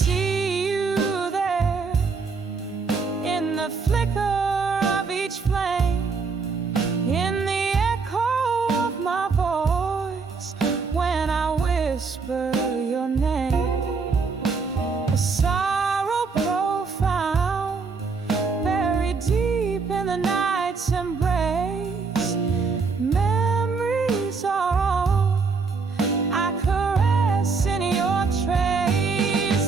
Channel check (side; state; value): left; quieter; 4.8 dB